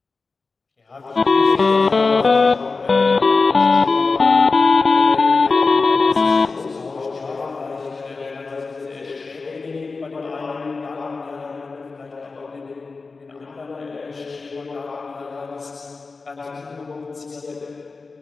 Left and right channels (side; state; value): right; quieter; 4.1 dB